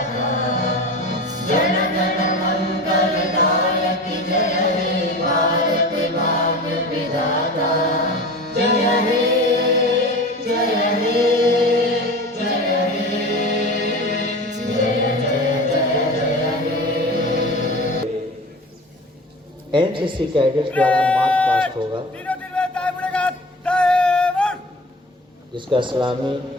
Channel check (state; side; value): normal; both; correlation 0.34